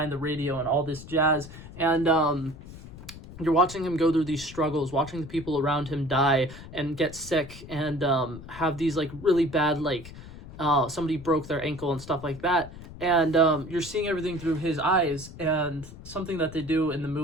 the radio and all this jazz. And you're watching him go through these struggles, watching the people around him die and get sick, and have these like really bad, like somebody broke their ankle and stuff like that. And you're seeing everything through his eyes. And something that they do in the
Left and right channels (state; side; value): noise; left; rumble, 15 dB below the sound